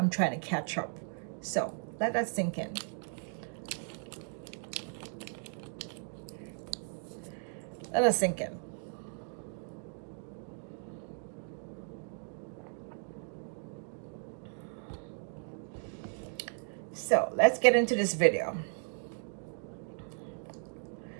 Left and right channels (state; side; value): silent; left; 54 dB below the other